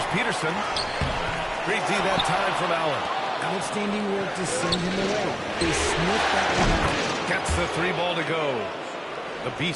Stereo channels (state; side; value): identical; both; correlation 1.00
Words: Peterson. Great D that time from Allen. Outstanding work to send him away. They sniffed that one out. Gets the 3 ball to go. The